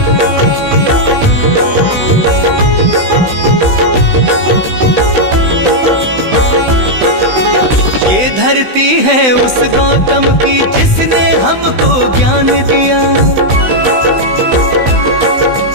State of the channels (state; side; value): late; left; 16 ms